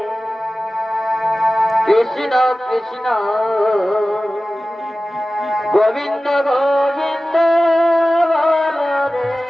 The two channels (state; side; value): normal; both; correlation 0.96